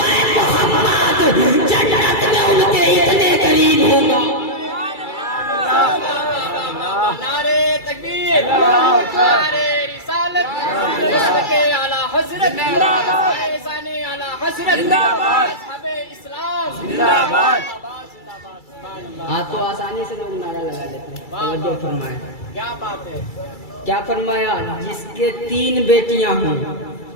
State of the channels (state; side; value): late; right; 2.3 ms